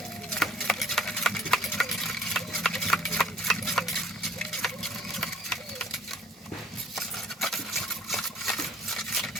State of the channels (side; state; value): both; normal; correlation 0.55